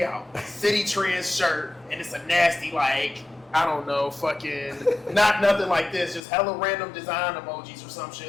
out. City Trends shirt, and it's a nasty, like, I don't know, fucking, not nothing like this, just hella random design emojis or some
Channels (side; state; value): right; drops out; at 6.2 s